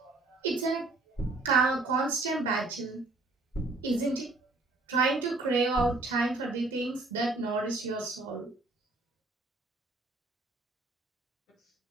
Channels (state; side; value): quieter; left; 3.2 dB